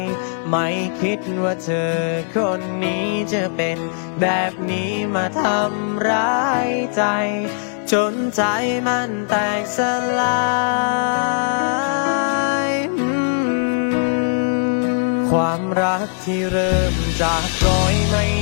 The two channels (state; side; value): silent; right; 66 dB below the other